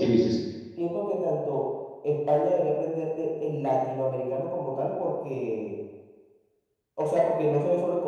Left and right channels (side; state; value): both; identical; correlation 1.00